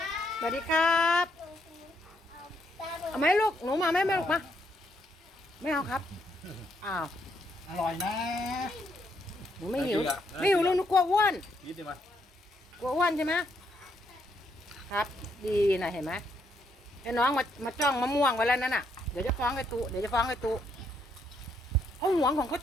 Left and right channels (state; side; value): normal; both; correlation 0.74